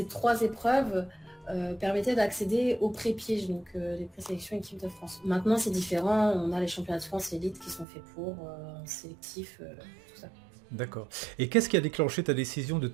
3 épreuves permettaient d'accéder aux pré-pièges, donc les présélections équipe de France. Maintenant, c'est différent. On a les championnats de France élite qui sont faits pour sélectif, tout ça. D'accord. Et qu'est-ce qui a déclenché ta décision de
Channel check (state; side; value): drops out; left; at 7.9 s